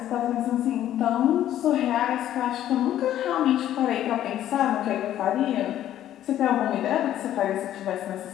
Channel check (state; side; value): quieter; right; 12.0 dB